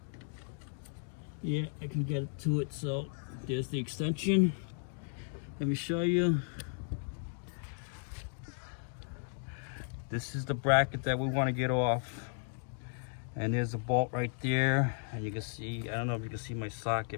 Yeah, I can get it to it. So there's the extension. Let me show you. This is the bracket that we want to get off. And there's a bolt right there. And you can see, I don't know if you can see my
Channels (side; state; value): right; silent; 54 dB below the other